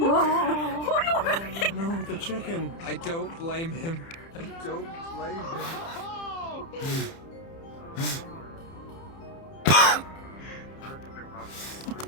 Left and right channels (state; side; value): late; right; 30 ms